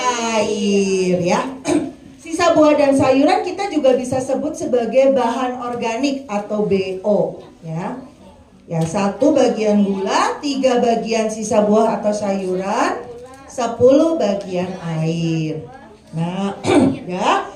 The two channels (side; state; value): both; identical; correlation 1.00